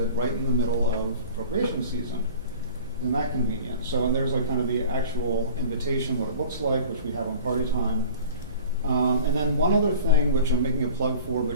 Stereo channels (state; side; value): inverted; both; correlation -0.41